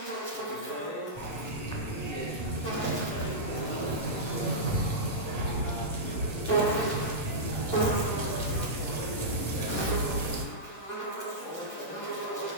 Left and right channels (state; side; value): late; right; 11 ms